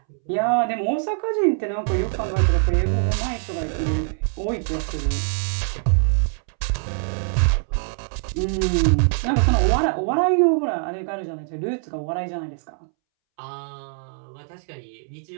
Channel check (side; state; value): left; silent; 63 dB below the other